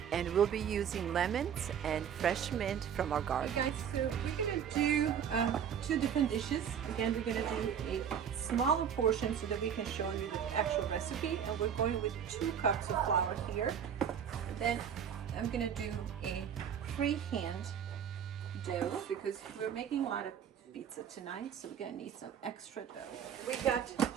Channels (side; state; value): left; quieter; 8.3 dB